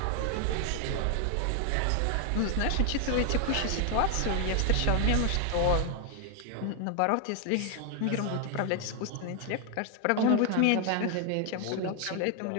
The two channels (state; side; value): different; both; correlation 0.00